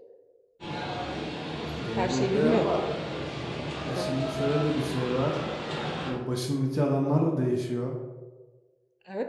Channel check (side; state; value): both; identical; correlation 1.00